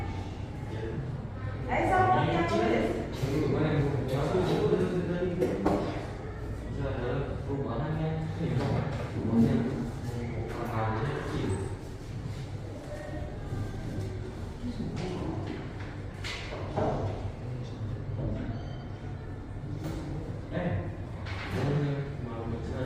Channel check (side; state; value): both; identical; correlation 1.00